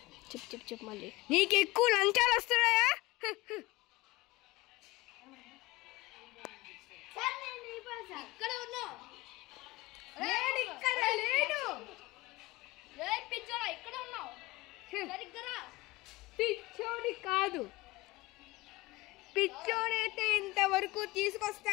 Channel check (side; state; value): right; quieter; 20.9 dB